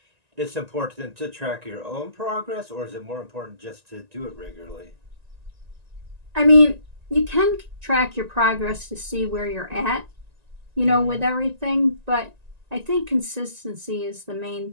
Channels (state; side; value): late; left; 1.9 ms